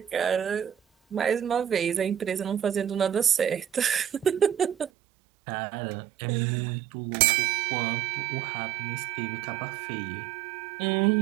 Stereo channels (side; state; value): left; drops out; at 4.9 s